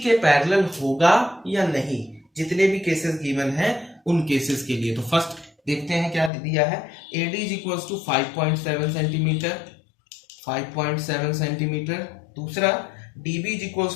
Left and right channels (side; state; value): right; drops out; at 6.3 s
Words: के parallel होगा या नहीं, जितने भी केसेस गिवन हैं उन केसेस के लिए। तो फर्स्ट देखते हैं क्या दिया है। AD is equals to 5.7 centimetre, दूसरा DB is